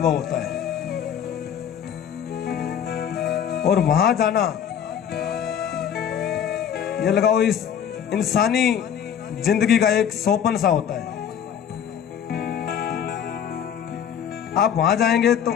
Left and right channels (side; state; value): right; quieter; 8.7 dB